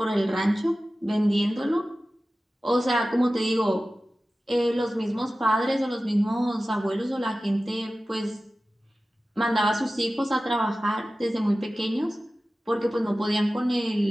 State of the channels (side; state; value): both; normal; correlation 0.95